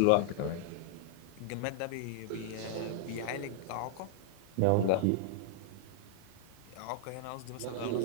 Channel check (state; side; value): different; both; correlation 0.00